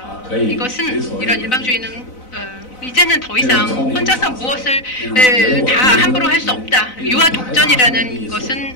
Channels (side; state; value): right; late; 4.0 ms